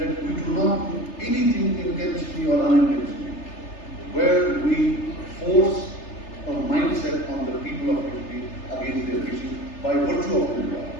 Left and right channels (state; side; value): late; right; 3.3 ms